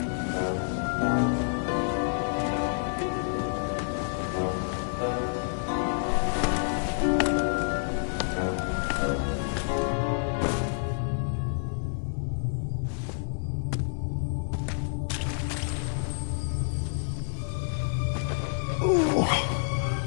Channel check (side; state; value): right; silent; digital silence